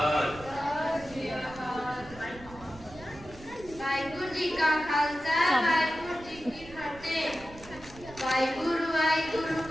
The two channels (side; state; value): right; noise; rumble, 18 dB below the sound